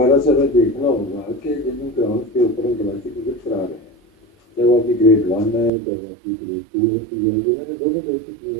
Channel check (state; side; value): drops out; left; at 5.7 s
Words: से हमें देखना होगा कि जिन ग्राउंड के ऊपर हम डोमेस्टिक क्रिकेट करा रहे हैं, चाहे वो आपकी ग्रेड 1 है, चाहे वो आपकी ग्रेड 2 होती है, ये मैंने दोनों देख चुकी